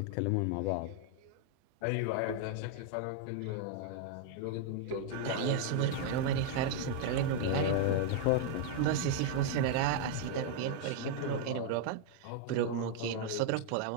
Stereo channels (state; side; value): different; both; correlation 0.00